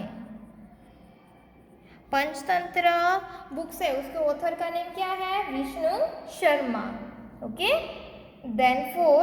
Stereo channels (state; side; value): identical; both; correlation 1.00